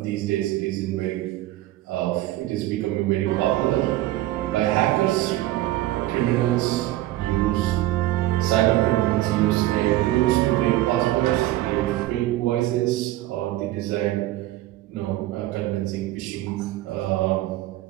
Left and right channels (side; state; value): left; quieter; 15.8 dB